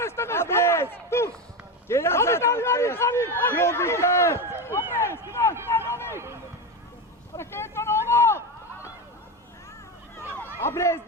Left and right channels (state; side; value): normal; both; correlation 0.18